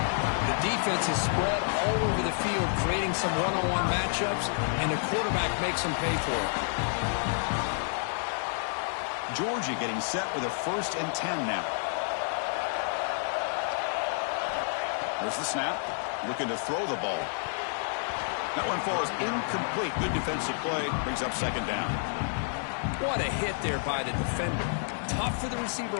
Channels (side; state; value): right; silent; digital silence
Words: The defense is spread all over the field, creating some one-on-one matchups, and the quarterback makes them pay for it. Georgia getting set with a 1st and 10 now. Here's the snap. Looking to throw the ball. That one falls incomplete. Good defensive play. Brings up second down. What a hit there by the defender. Tough for the receiver